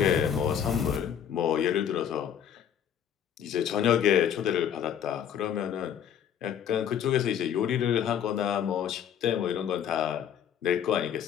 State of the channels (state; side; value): quieter; right; 9.0 dB